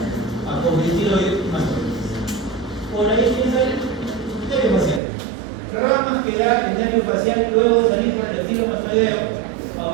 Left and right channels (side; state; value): left; drops out; at 5.0 s